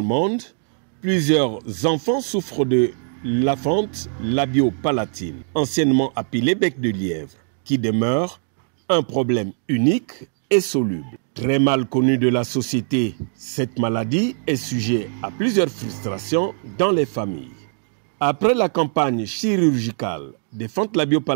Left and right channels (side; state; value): left; silent; 65 dB below the other